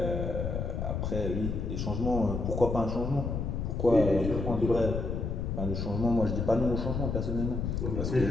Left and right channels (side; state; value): left; noise; rumble, 2 dB below the sound